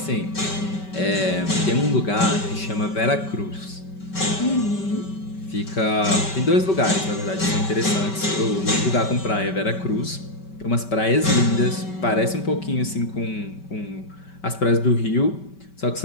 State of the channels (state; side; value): late; right; 5.2 ms